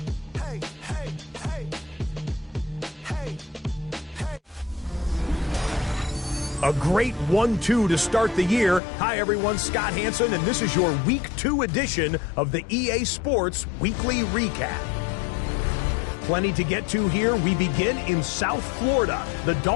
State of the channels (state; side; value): drops out; right; at 8.8 s